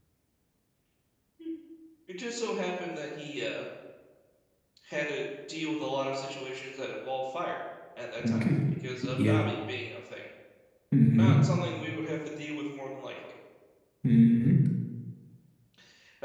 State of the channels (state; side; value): identical; both; correlation 1.00